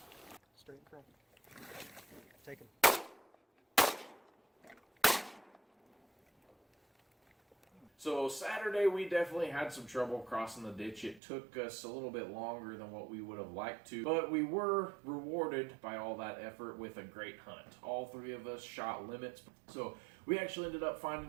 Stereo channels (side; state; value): left; drops out; at 11.2 s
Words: Straight in front. Take him. So Saturday we definitely had some trouble crossing the ditch. It took us a little bit longer than what we would have liked to, but we were rewarded by all that effort with a great hunt. All 3 of us shot limits, so we actually ended up